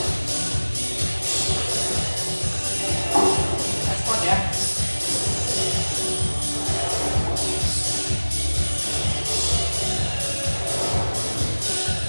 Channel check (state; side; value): inverted; both; correlation -1.00